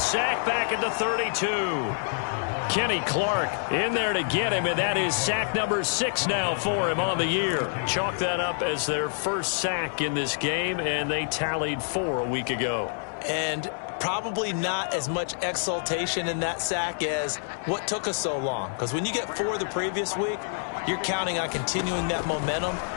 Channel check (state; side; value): silent; right; digital silence